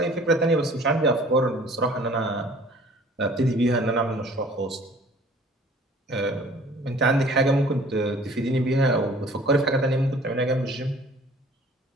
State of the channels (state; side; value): normal; both; correlation 0.51